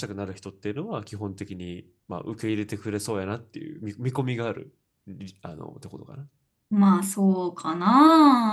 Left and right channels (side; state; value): both; identical; correlation 1.00